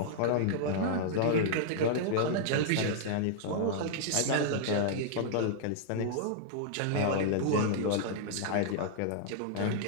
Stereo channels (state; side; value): different; both; correlation -0.01